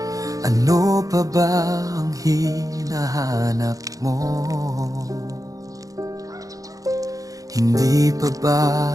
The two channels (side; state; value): left; late; 0.17 ms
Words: Ano pa ba ang hinahanap mo? Hindi pa ba